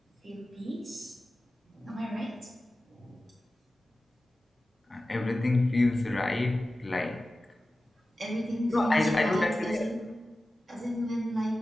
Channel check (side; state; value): both; normal; correlation 0.95